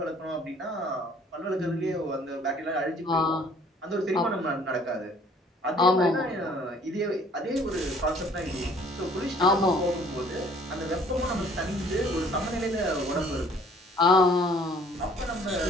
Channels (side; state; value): both; normal; correlation 0.57